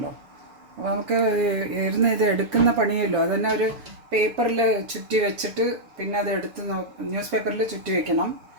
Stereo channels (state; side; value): late; left; 6.7 ms